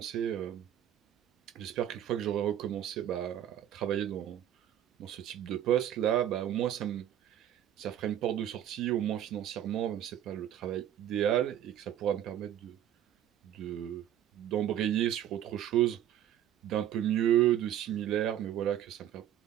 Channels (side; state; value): left; quieter; 11.1 dB